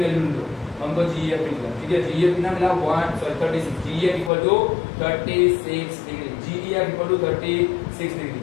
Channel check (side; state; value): right; drops out; at 4.3 s